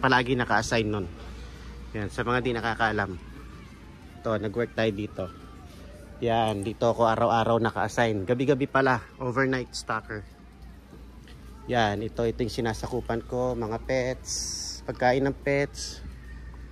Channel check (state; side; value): identical; both; correlation 1.00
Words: naka-assign nun. Ayan. Sa mga di nakakaalam. Ito, nag-work tayo dito. Yan. Dito ako araw-araw naka-assign. Gabi-gabi pala. Overnight stocker. Yan. Ito yung sinasakupan ko. Mga pets. Pagkain ng pets.